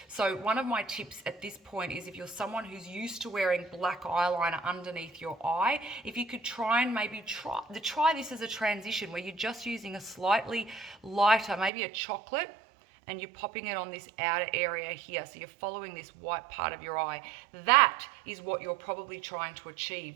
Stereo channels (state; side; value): drops out; left; at 11.7 s